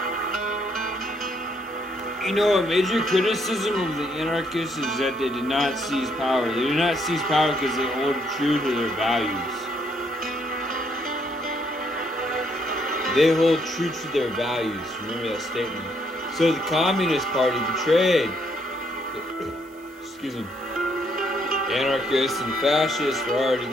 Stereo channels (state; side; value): noise; right; hiss, 30 dB below the sound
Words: You know, a major criticism of the anarchists is that they did not seize power. They did not seize power because they hold true to their values. They hold true to their values. Remember that statement. So the Communist Party betrayed, excuse me, anarchists and fascists were already